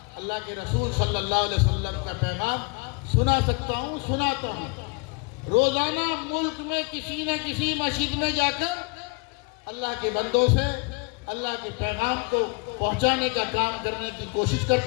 کے رسول صلی اللہ علیہ وسلم کا پیغام سنا سکتا ہوں، سناتا ہوں۔ روزانہ ملک میں کسی نہ کسی مسجد میں جا کر اللہ کے بندوں سے اللہ کے پیغام کو پہنچانے کا کام کرنے کی کوشش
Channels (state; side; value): quieter; right; 30.0 dB